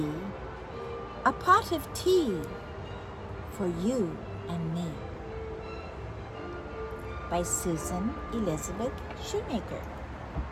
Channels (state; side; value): identical; both; correlation 1.00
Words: a pot of tea for you and me. By Susan Elizabeth Shoemaker.